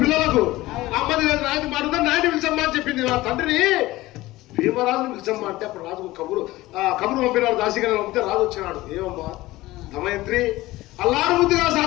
పిల్లలకు అమ్మది నాయనది మాట ఉందా నాయన పిలిచమ్మా అని చెప్పింది. నా తండ్రిని భీమరాజుని పిలిచమ్మా అంటే అప్పుడు రాజు కబురు పంపినాడు. దాసిగా పంపితే రాజు వచ్చినాడు. ఏమమ్మా దమయంత్రి అల్లారు ముద్దుగా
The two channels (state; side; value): quieter; right; 18.1 dB